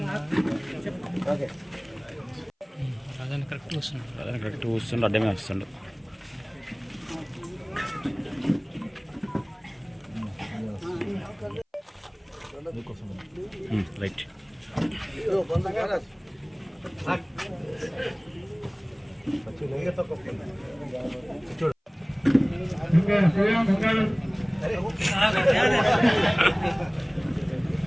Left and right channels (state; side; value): identical; both; correlation 1.00